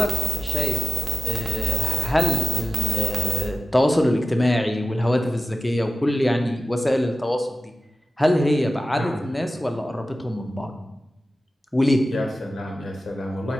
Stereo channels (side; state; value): both; normal; correlation 0.93